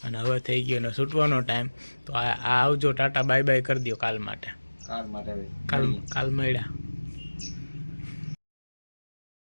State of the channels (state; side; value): inverted; both; correlation -1.00